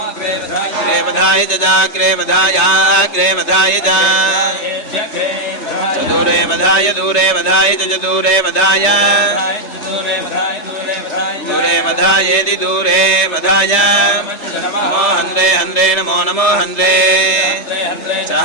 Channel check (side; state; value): right; late; 3.3 ms